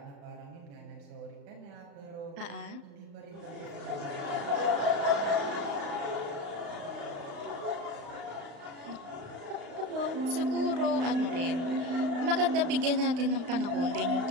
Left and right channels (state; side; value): late; left; 35 ms